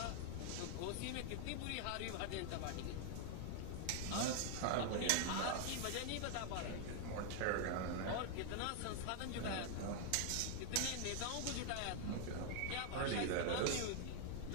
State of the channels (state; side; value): different; both; correlation 0.00